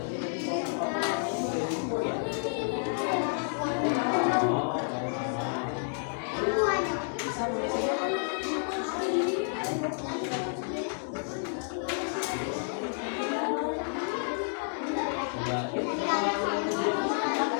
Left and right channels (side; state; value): right; silent; digital silence